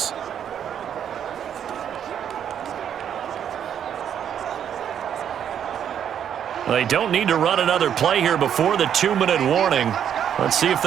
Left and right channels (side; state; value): left; quieter; 9.0 dB